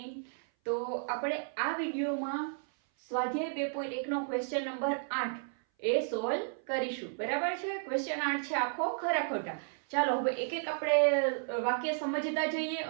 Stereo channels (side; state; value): left; silent; 56 dB below the other